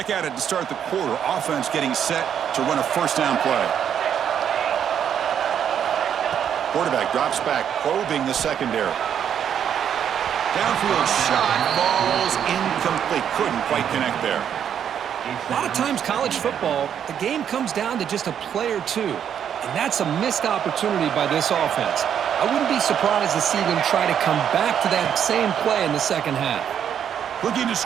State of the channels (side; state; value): left; quieter; 8.8 dB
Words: at it to start the quarter. Offense getting set to run a first down play. Quarterback drops back, probing the secondary. Downfield shot falls incomplete. Couldn't quite connect there. A lot of times college football, the game comes down to just a play or two. And that's a missed opportunity by this offense. I wouldn't be surprised to see them try to come back to that same play in the second half. Looking to